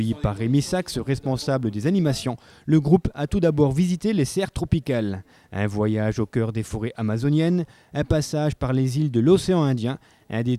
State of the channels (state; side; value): identical; both; correlation 1.00